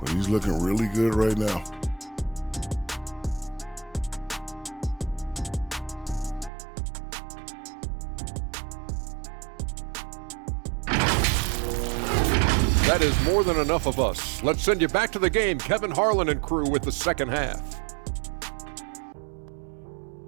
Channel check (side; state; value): left; drops out; at 6.5 s